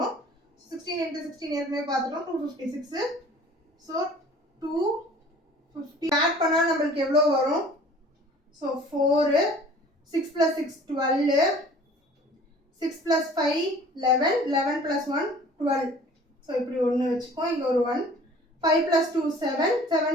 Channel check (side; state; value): both; normal; correlation 0.49